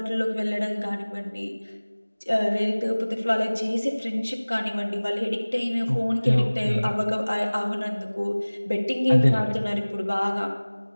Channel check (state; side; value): inverted; both; correlation -1.00